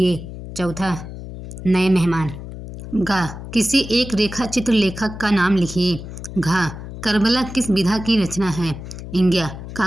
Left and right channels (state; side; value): noise; left; hum, 11 dB below the sound